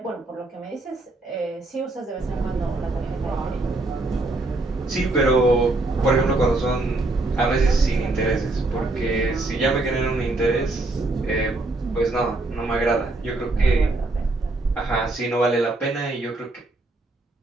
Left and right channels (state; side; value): quieter; left; 3.0 dB